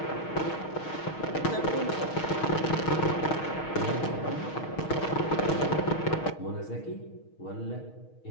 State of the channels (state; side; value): late; right; 6.4 ms